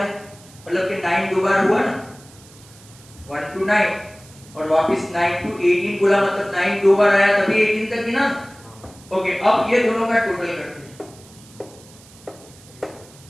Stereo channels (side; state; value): right; noise; hiss, 23 dB below the sound